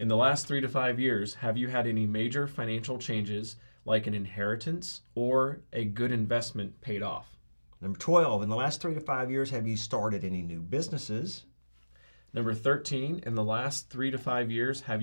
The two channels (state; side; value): inverted; both; correlation -1.00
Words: the last 3 to 5 years, have you had any major financial changes like an inheritance or a good investment paid off? Number 12, in the last 3 to 5 years, have you started any new businesses? Number 13, in the last 3 to 5 years, have